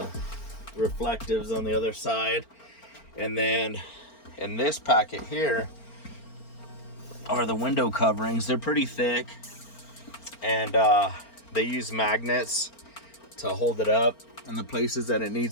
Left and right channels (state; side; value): late; right; 4.4 ms